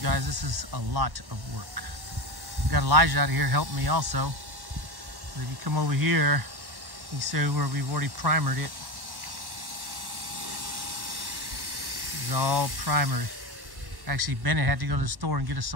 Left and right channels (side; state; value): left; late; 1.1 ms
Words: guys, this is a lot of work. We've got Elijah out here helping me also. So if you come over here, you see where we've already primered it. It's all primered. Actually, Bennett had to go to the store and get us